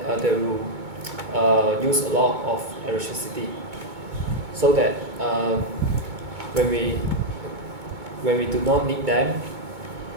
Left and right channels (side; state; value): left; late; 2.2 ms